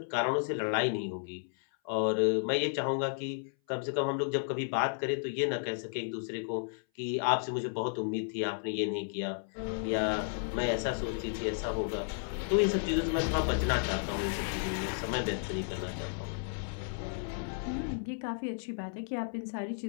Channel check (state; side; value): silent; right; 56 dB below the other